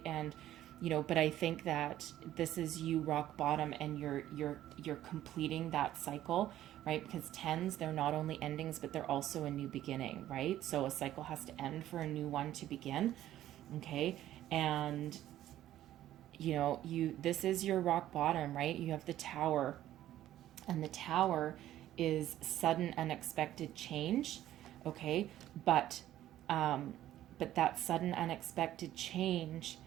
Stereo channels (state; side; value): quieter; left; 13.1 dB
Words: And but I think that this is you rock bottom, and you're completing that cycle, right? Because tens, they're not only endings, but they're also a new beginning, right? So a cycle has to end for a new one to begin. Okay, and this is your rock bottom, right? You have the Tower, and the Tower is sudden, unexpected change. Okay, but that sudden, unexpected change